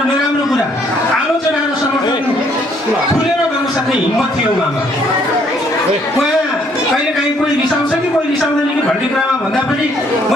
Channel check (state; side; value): normal; both; correlation 0.66